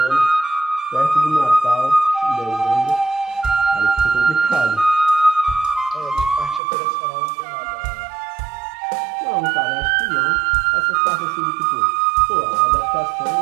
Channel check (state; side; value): drops out; left; at 6.6 s